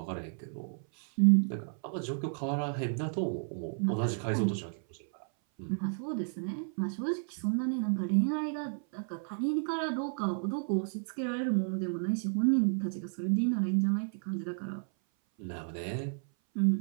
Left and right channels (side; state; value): left; silent; 56 dB below the other